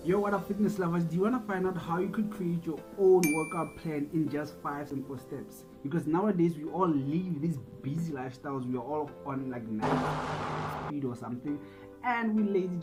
Yo, what up, fitness lovers? Do you want to find out how you could create your own workout plan in just 5 simple steps? Because nowadays we all live these busy lifestyles. We are all on like 9 speed or something, and we're lazy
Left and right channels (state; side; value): identical; both; correlation 1.00